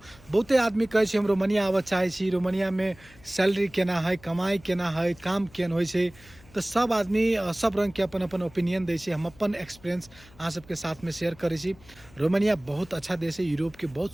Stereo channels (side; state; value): left; noise; hum, 24 dB below the sound